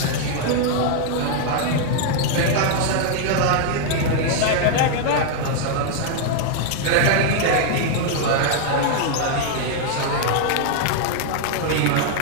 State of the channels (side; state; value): both; different; correlation 0.00